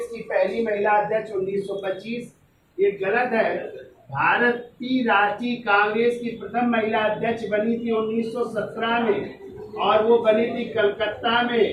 की पहली महिला अध्यक्ष 1925। ये गलत है। भारतीय राष्ट्रीय कांग्रेस की प्रथम महिला अध्यक्ष बनी थी 1917 में। और वो बनी थी कलकत्ता में।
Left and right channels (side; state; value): both; identical; correlation 1.00